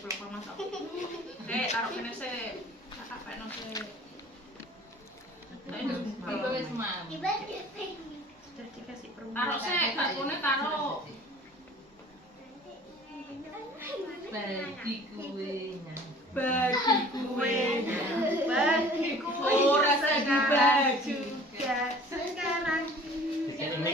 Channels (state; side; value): normal; both; correlation 0.48